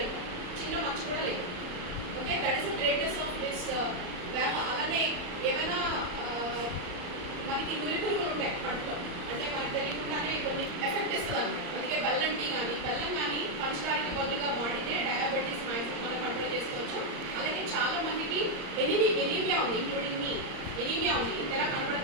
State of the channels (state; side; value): late; left; 34 ms